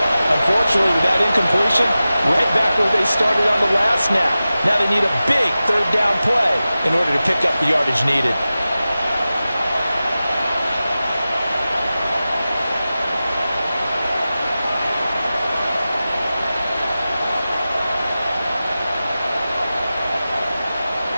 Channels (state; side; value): inverted; both; correlation -0.95